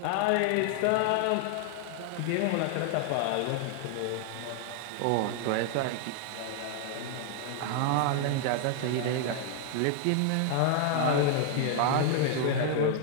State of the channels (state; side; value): different; both; correlation 0.00